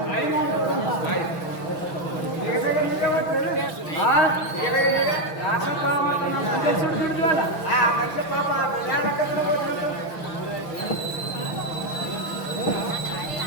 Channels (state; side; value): late; right; 6.3 ms